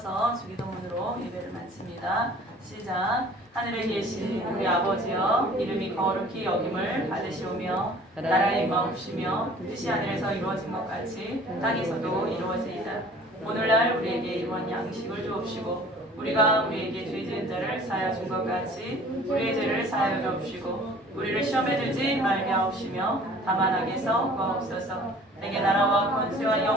주기도문으로 예배를 마칩니다. 시작. 하늘에 계신 우리 아버지여, 이름이 거룩히 여김을 받으시오며 나라의 마옵시며 뜻이 하늘에서 이루어진 것 같이 땅에서도 이루어지이다. 오늘날 우리에게 일원 양식을 주옵시고 우리가 우리에게 죄 지은 자를 사하여 준 것 같이 우리의 죄를 사하여 주옵시고 우리를 시험에 들지 말게 하옵시며 다만 악에서 구하옵소서. 내게 나라와 권세와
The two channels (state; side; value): normal; both; correlation 0.49